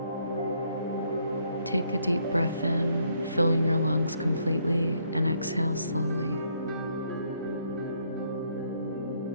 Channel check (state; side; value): inverted; both; correlation -0.71